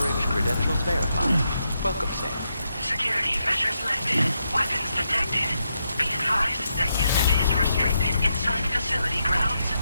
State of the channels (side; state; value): both; inverted; correlation -0.83